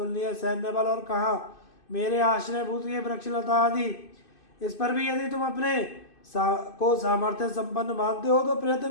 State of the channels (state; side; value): late; right; 2.6 ms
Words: सैन्य बल, और कहा मेरे आश्रयभूत ये वृक्षलता आदि। इस पर भी यदि तुम अपने को सामर्थ्य संपन्न मानते हो तो